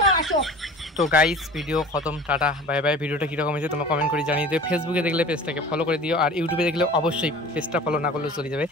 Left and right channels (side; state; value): both; normal; correlation 0.41